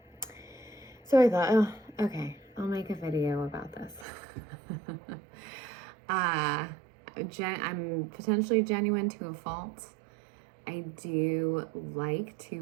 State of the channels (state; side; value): drops out; left; at 4.0 s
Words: So I thought, okay, I'll make a video about this. I'm potentially genuine to a fault. I do like